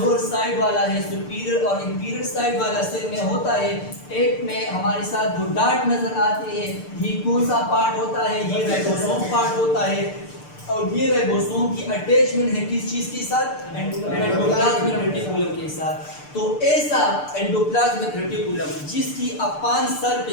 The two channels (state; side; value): late; right; 6.7 ms